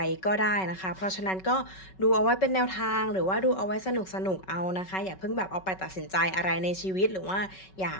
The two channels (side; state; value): right; late; 5.3 ms